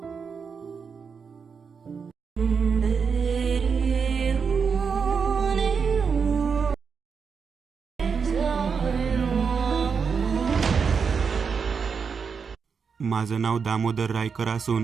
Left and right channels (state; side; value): quieter; left; 5.9 dB